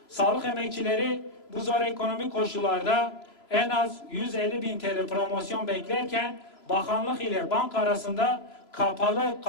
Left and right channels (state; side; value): late; right; 3.0 ms